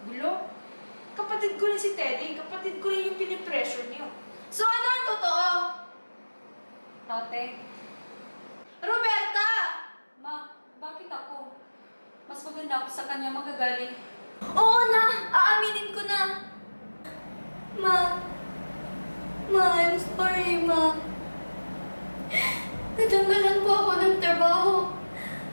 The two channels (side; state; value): both; inverted; correlation -1.00